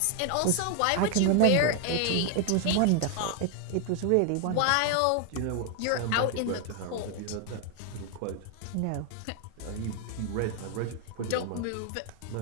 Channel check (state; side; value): different; both; correlation 0.00